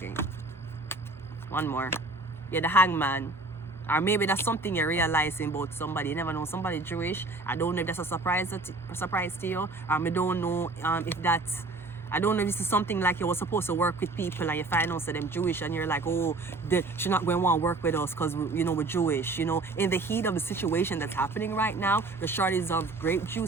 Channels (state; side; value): quieter; left; 3.2 dB